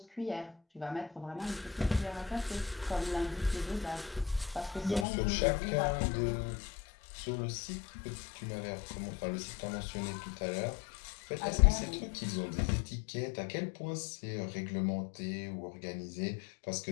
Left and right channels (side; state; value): right; drops out; at 5.1 s